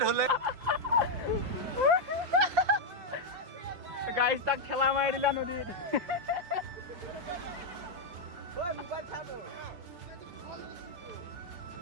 hole. Guys, tak khela mai dila nodit.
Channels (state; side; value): late; left; 5.7 ms